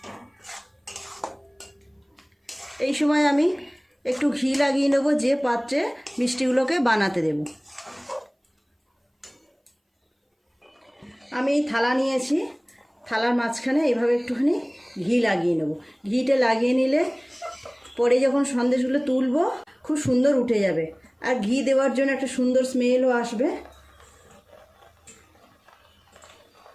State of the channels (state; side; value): identical; both; correlation 1.00